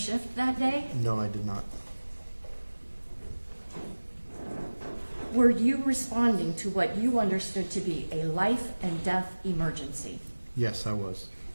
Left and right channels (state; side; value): inverted; both; correlation -1.00